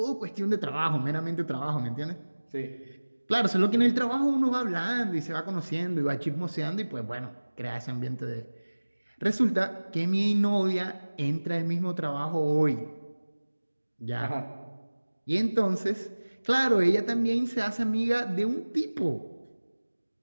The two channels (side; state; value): both; inverted; correlation -1.00